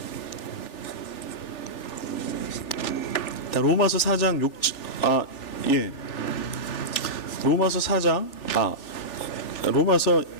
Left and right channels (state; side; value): late; right; 3.4 ms